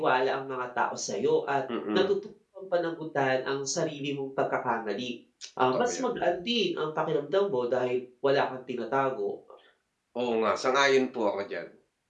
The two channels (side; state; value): both; identical; correlation 1.00